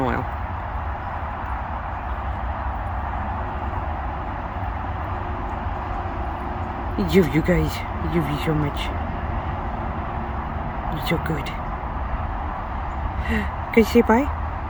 You guys, I love you so much. You're so good. Can you say bye?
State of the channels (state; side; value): identical; both; correlation 1.00